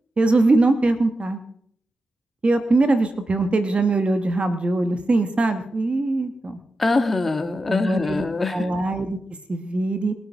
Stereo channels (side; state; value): both; normal; correlation 0.90